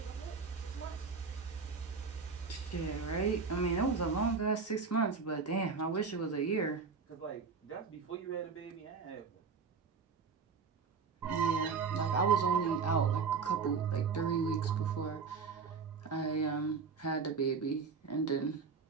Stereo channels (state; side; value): quieter; left; 5.3 dB